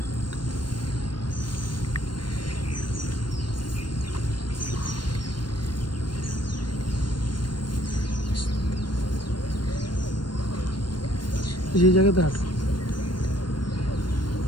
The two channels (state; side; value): late; right; 0.72 ms